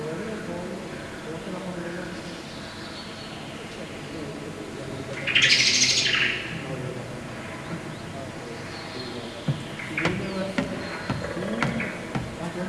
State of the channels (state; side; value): identical; both; correlation 1.00